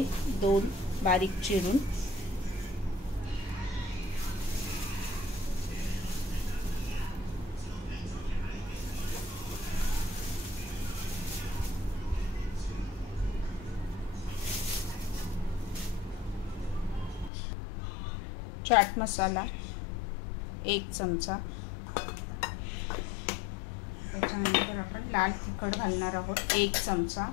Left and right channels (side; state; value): right; drops out; at 17.3 s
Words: 2 बारीक चिरून, चाट मसाला 1 चमचा, त्याच्यानंतर आपण लाल तिखट घालणार आहोत 1 चमचा।